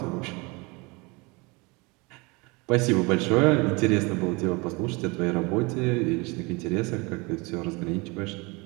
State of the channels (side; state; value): left; quieter; 26.8 dB